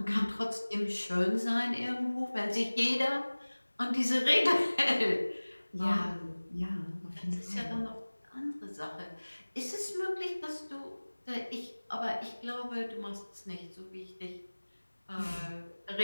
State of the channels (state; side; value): inverted; both; correlation -1.00